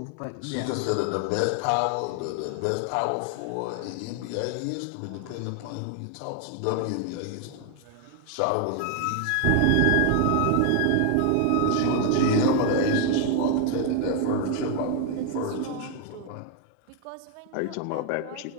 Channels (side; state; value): both; different; correlation 0.01